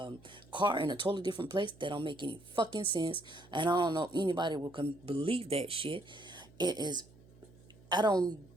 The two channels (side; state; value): right; noise; hum, 24 dB below the sound